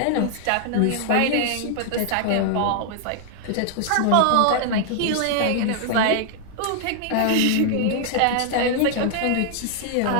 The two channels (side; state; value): both; different; correlation 0.00